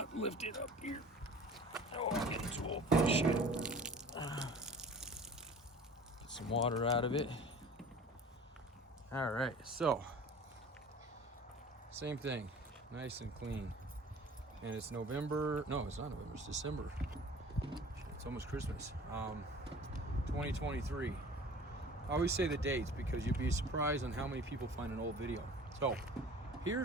lift it up here. Oh, I'm getting too old for this shit. Get some water out of it. All right, so same thing, nice and clean. And it's November, no, it's not November, it's December. It's almost Christmas. 2023. I always say the dates because you'd be surprised on how many people find an old video. So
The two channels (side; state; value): both; normal; correlation 0.44